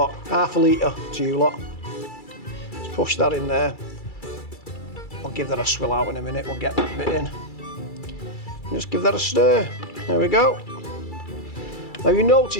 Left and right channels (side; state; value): right; late; 2.3 ms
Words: half a litre to you lot. Let's push that in there. I'll give that a swill out in a minute, we'll get that bit in. Just give that a stir. There we go. Now you